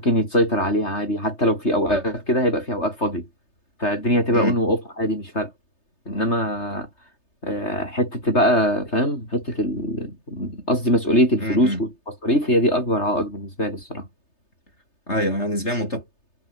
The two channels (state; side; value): late; right; 3.3 ms